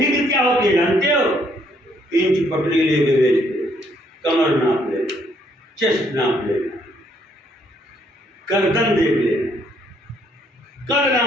کیا ہوتی ہے جانتے ہو؟ انچ پٹری لے کے بیچتے، کمر ناپ لے، چیسٹ ناپ لینا، گردن دیکھ لینا، کر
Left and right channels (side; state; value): both; normal; correlation 0.69